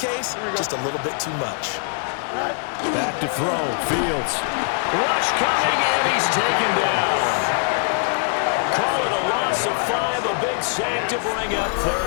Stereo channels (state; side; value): silent; right; 55 dB below the other